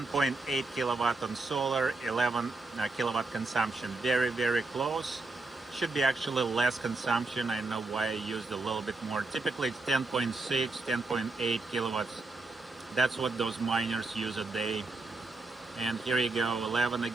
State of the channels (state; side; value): quieter; left; 3.4 dB